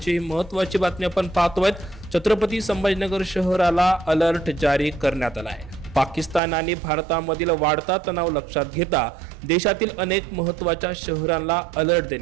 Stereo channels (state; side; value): drops out; left; at 6.4 s